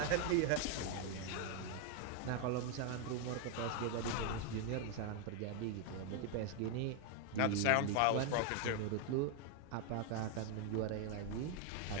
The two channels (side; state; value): both; different; correlation 0.01